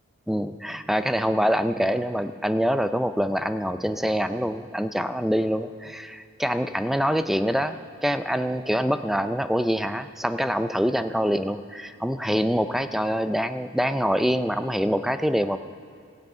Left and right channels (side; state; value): both; normal; correlation 0.93